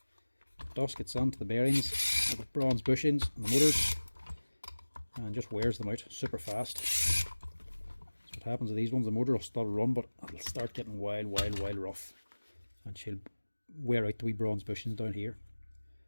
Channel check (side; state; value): both; inverted; correlation -1.00